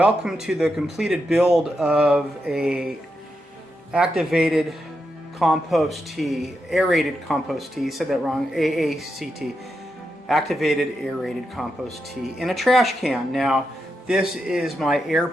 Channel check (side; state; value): both; normal; correlation 0.85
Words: to the completed build of a activated compost tea, aerated compost tea, said that wrong, AACT, activated aerated compost tea in a trash can. Now this is my air